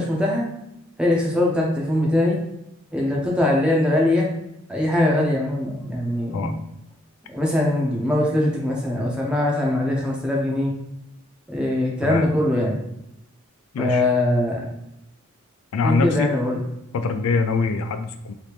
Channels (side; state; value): both; normal; correlation 0.72